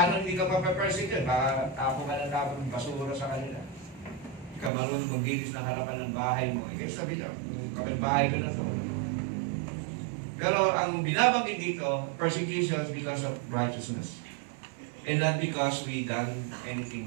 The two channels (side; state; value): left; drops out; at 4.7 s